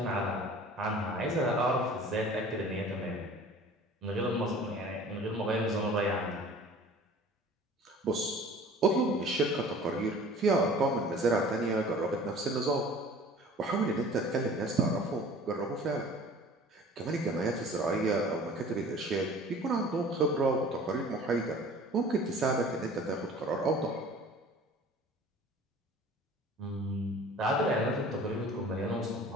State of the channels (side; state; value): both; normal; correlation 0.46